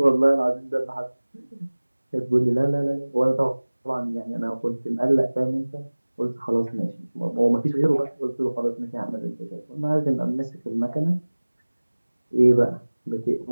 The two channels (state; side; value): inverted; both; correlation -1.00